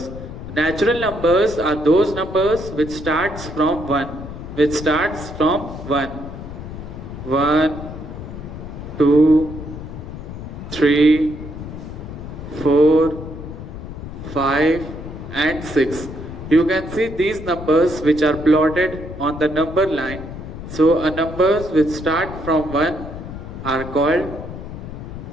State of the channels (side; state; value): left; noise; rumble, 10 dB below the sound